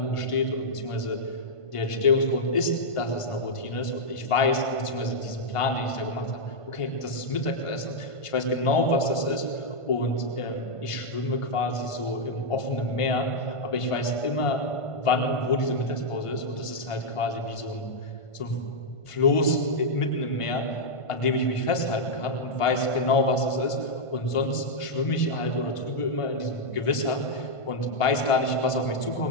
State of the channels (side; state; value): right; late; 1.5 ms